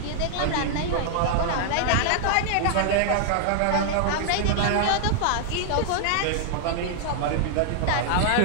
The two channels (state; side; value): different; both; correlation -0.01